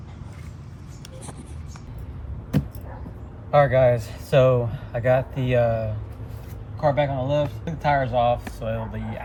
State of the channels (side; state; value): both; identical; correlation 1.00